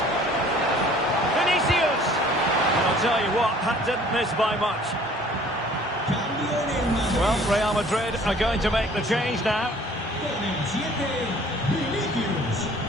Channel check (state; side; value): normal; both; correlation 0.53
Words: Vinicius! And I'll tell you what, that didn't miss by much. Well, Real Madrid are going to make the change now.